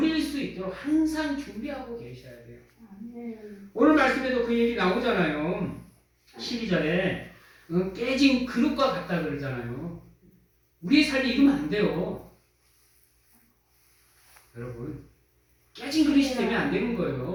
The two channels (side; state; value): both; identical; correlation 1.00